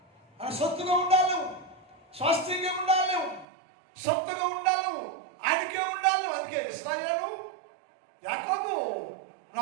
ఆయన సొత్తుగా ఉండాలి, స్వాస్థ్యంగా ఉండాలి, సొత్తుగా ఉండాలి, ఆయనకే ఉండాలి. అందుకే ఇశ్రాయేలు యాకోబు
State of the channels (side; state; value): left; drops out; at 3.5 s